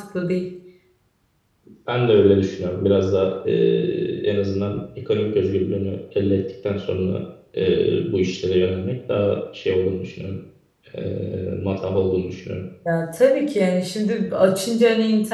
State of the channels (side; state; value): both; identical; correlation 1.00